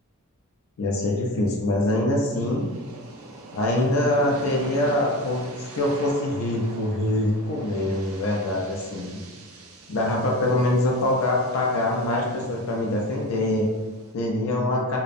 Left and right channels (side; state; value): both; normal; correlation 0.30